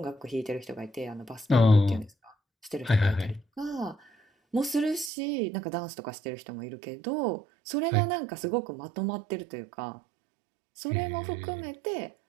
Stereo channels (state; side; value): drops out; left; at 5.1 s